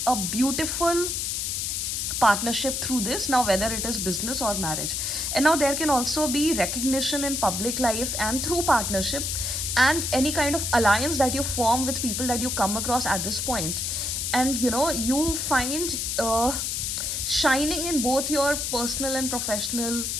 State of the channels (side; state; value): left; noise; hiss, 1 dB below the sound